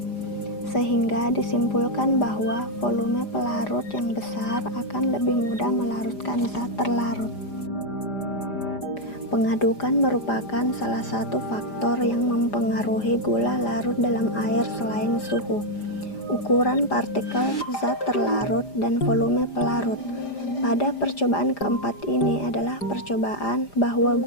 Sehingga disimpulkan bahwa volume pelarut yang besar akan lebih mudah melarutkan zat terlarut. Pengadukan merupakan salah satu faktor yang mempengaruhi gula larut dalam air selain suhu, ukuran partikel zat terlarut, dan volume pelarut. Pada percobaan keempat ini adalah percobaan bahwa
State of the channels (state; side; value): late; right; 5.0 ms